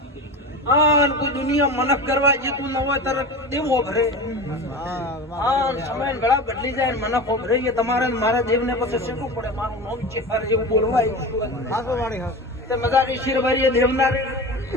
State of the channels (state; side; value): normal; both; correlation 0.29